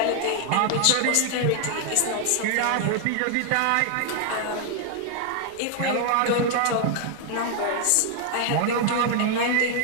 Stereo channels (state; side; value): different; both; correlation 0.00